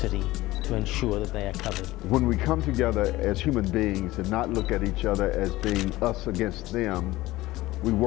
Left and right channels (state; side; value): quieter; right; 18.0 dB